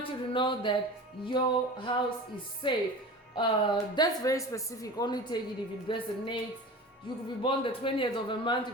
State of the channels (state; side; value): normal; both; correlation 0.35